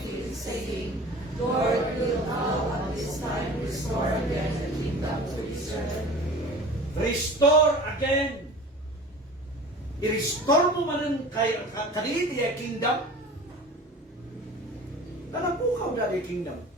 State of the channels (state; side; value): normal; both; correlation 0.40